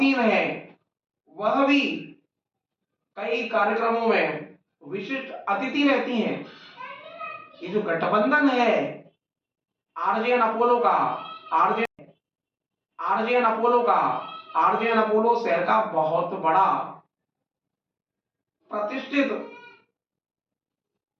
है, वह भी कई कार्यक्रमों में विशिष्ट अतिथि रहती हैं। ये जो गठबंधन है आरजेएन अपोलो का, आरजेएन अपोलो का, आरजेएन अपोलो शहर का बहुत बड़ा प्रतिष्ठित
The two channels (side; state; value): both; identical; correlation 1.00